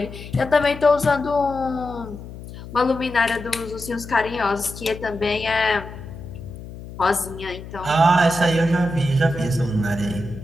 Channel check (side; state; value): left; noise; hum, 13 dB below the sound